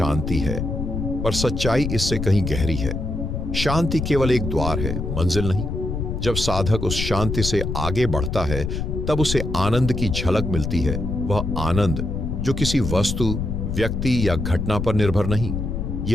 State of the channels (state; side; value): noise; left; rumble, 3 dB below the sound